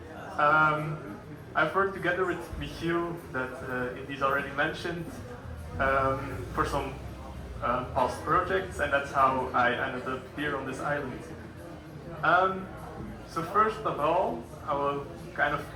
I've worked together with Michiel, that Elise already mentioned, for some past projects, and that's how I ended up here on this island. So first of all, I will kind of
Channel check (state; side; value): identical; both; correlation 1.00